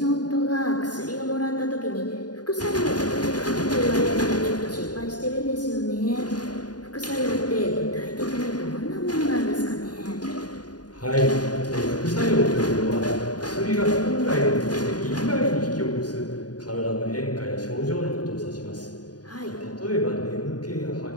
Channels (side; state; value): right; late; 0.69 ms